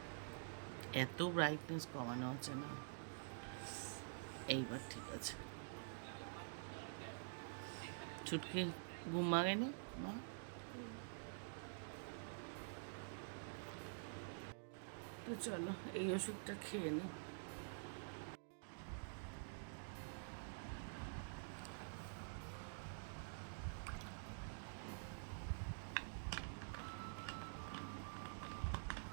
এত ব্রাইটনেস কমানো আছে না, এইবার ঠিক আছে। ছুটকি ঘুম ভাঙেনি মা? তো চলো এই ওষুধটা খেয়ে নি।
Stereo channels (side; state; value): left; silent; digital silence